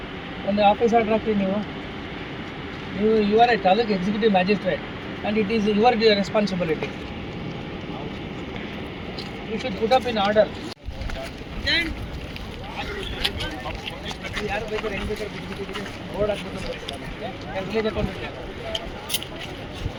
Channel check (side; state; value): both; identical; correlation 1.00